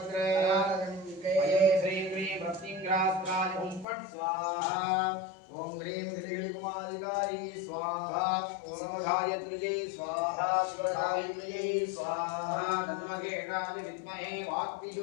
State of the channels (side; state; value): right; drops out; at 3.9 s